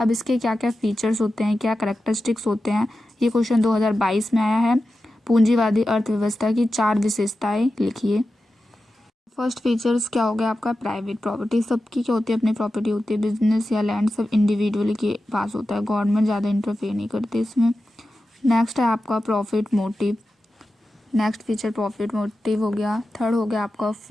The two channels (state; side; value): normal; both; correlation 0.92